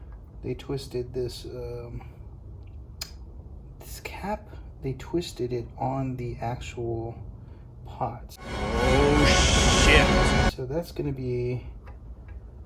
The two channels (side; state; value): both; identical; correlation 1.00